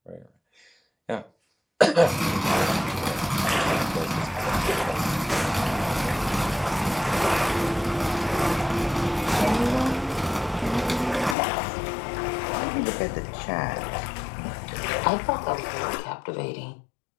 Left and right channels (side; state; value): right; drops out; at 11.4 s